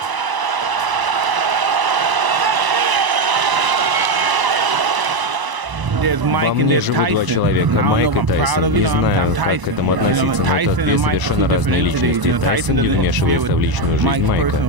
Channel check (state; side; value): late; left; 1.0 ms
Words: Во мне живут два человека, Майк и Тайсон. Не знаю, как к этому относиться, но это две совершенно разные личности. Тайсон не вмешивается в личную жизнь